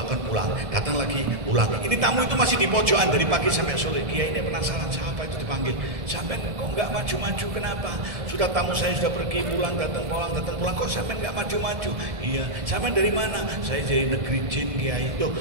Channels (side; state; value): left; late; 1.7 ms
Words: pulang. Datang lagi, pulang. Ini tamu itu masih di pojokan dari pagi sampai sore. Kiai ini penasaran, siapa itu dipanggil. Sampai kok nggak maju-maju, kenapa? Sudah tamu saya sudah pergi, pulang, datang pulang. Kok sampai nggak maju-maju? Iya, sampai dari mana? Saya dari negeri jin, Kiai. Loh,